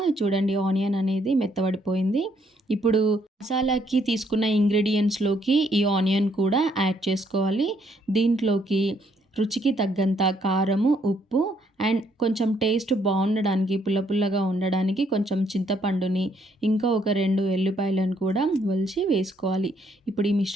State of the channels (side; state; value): both; normal; correlation 0.70